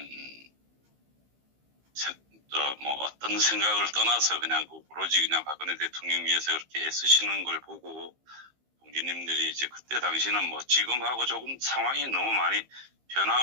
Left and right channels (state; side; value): late; left; 15 ms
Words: 어떤 생각을 떠나서 그냥 오로지 그냥 박근혜 대통령 위해서 그렇게 애쓰시는 걸 보고, 동기님들이 이제 그때 당시는 지금하고 조금 상황이 너무 많이